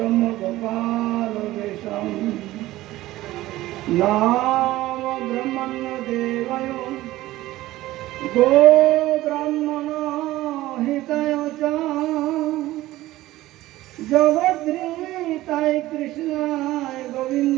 নাম ব্রহ্মণ্য দেবায় গো ব্রাহ্মণ হিতায় চ জগদ্ধাত্রীতায় কৃষ্ণায়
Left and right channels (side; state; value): left; quieter; 16.6 dB